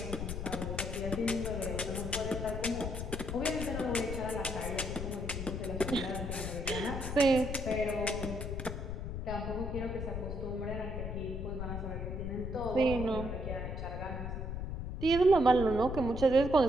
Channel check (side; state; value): left; noise; rumble, 4 dB below the sound